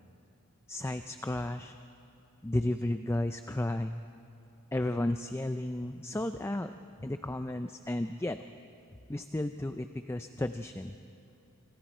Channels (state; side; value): normal; both; correlation 0.92